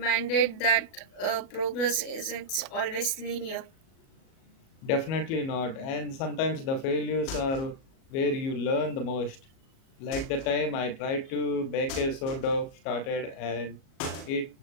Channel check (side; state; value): right; late; 37 ms